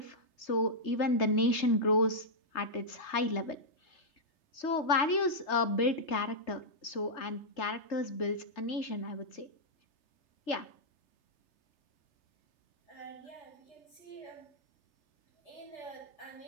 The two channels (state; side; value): late; right; 3.3 ms